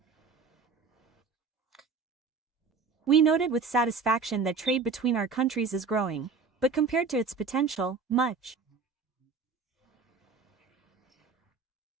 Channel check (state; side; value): quieter; left; 4.9 dB